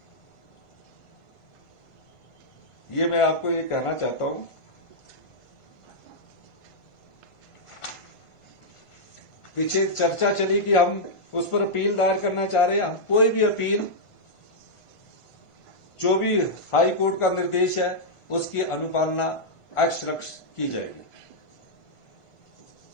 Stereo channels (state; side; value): late; right; 1.5 ms